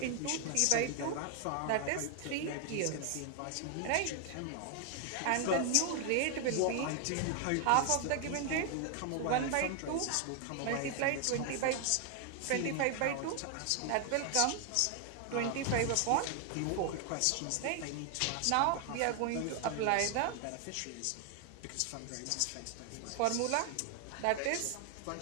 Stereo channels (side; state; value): both; different; correlation 0.00